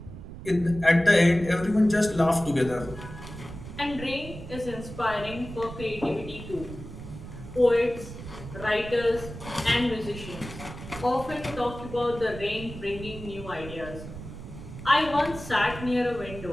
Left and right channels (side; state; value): right; noise; rumble, 12 dB below the sound